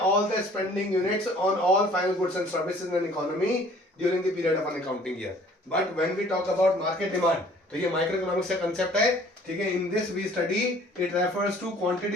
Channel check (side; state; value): both; normal; correlation 0.54